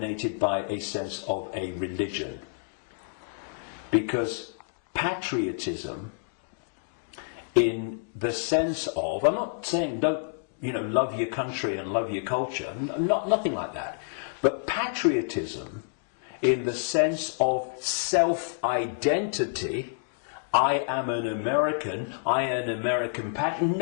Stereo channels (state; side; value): silent; right; digital silence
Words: by a sense of a religion. Because patriotism, in the sense of, I'm not saying don't, love your country and love your culture, nothing like that. But patriotism, in the sense of self-identity, I am an American, I am an American patriot.